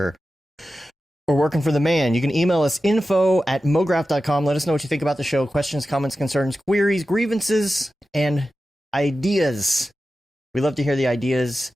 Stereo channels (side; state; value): both; normal; correlation 0.93